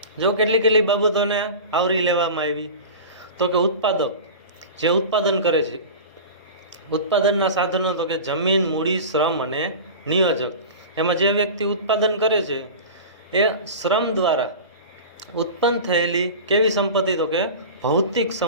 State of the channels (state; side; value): inverted; both; correlation -0.32